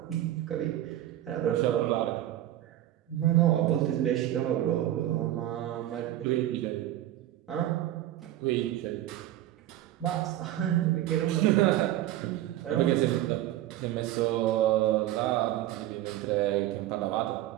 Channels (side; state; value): left; quieter; 13.6 dB